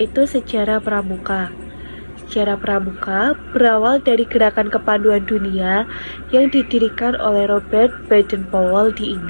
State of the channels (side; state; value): both; inverted; correlation -1.00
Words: sejarah pramuka. Sejarah pramuka berawal dari gerakan kepanduan dunia yang didirikan oleh Robert Baden-Powell di